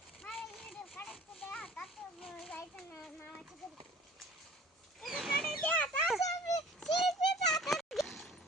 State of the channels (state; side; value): normal; both; correlation 0.48